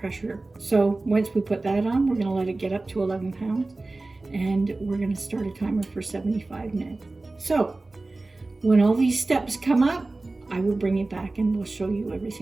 So once we put that on, we're gonna let it get up to 11 pounds, and we're gonna start a timer for 75 minutes. So when all these steps come up, I will bring you back and we'll show you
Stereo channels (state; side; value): quieter; left; 3.2 dB